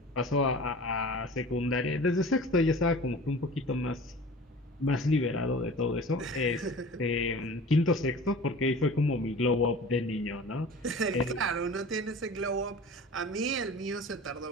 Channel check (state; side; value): normal; both; correlation 0.40